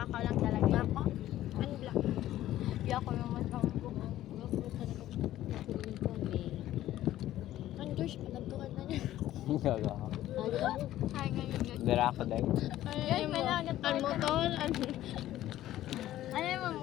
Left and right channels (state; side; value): quieter; right; 13.7 dB